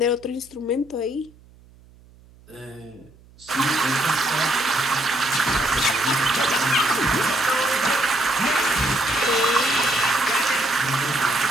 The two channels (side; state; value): right; noise; hum, 26 dB below the sound